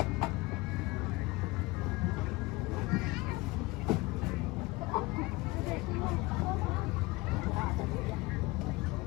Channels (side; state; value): right; quieter; 21.9 dB